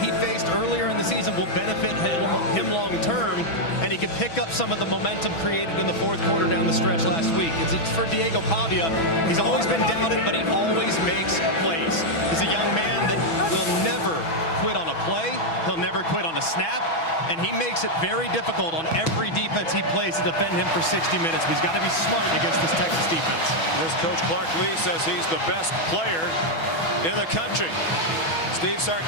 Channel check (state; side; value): late; right; 6.1 ms